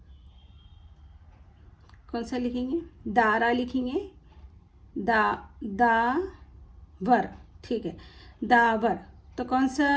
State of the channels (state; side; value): identical; both; correlation 1.00